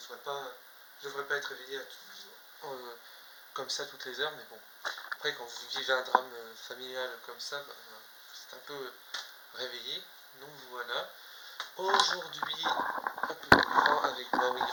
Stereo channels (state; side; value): identical; both; correlation 1.00